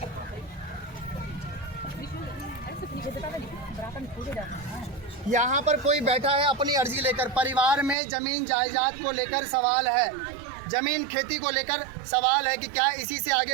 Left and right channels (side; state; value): left; drops out; at 8.0 s